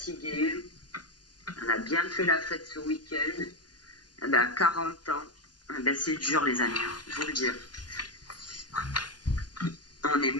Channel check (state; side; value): late; right; 0.70 ms